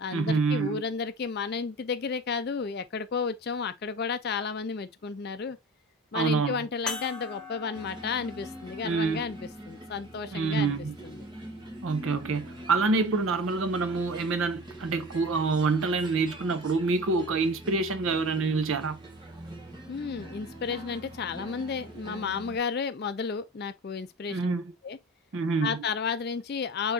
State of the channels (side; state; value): both; normal; correlation 0.36